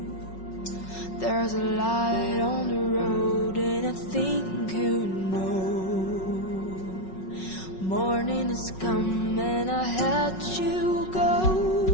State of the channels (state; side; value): late; right; 5.4 ms